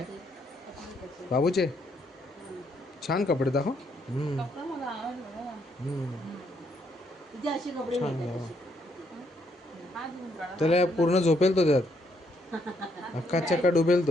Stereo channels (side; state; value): both; normal; correlation 0.73